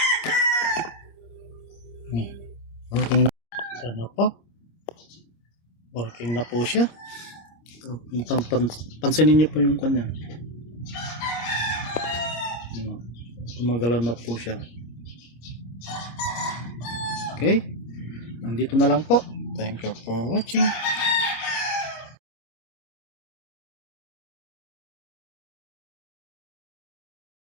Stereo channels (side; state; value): right; late; 26 ms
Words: Working na. Sana po. Working na po siya. Pansinin niyo po yung kanya. Gumagalaw na po siya. Okay. Nandito na lang po. Thank you for watching.